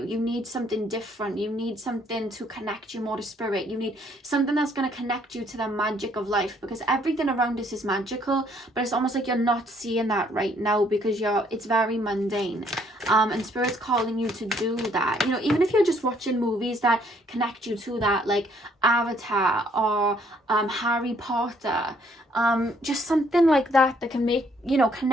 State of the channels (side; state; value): both; normal; correlation 0.65